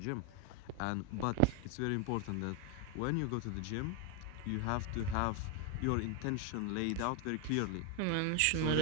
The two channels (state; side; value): different; both; correlation 0.01